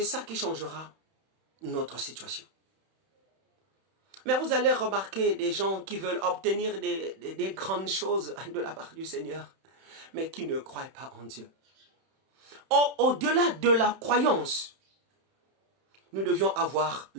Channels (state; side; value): late; left; 31 ms